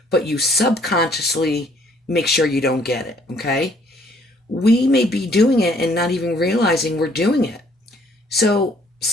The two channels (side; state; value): both; normal; correlation 0.63